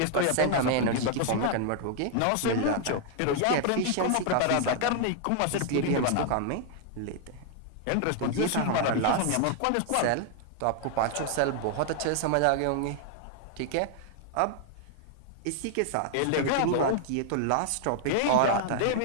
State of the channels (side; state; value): both; different; correlation 0.00